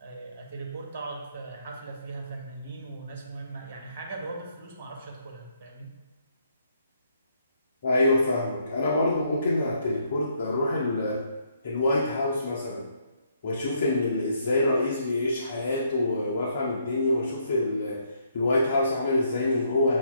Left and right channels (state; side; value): inverted; both; correlation -0.72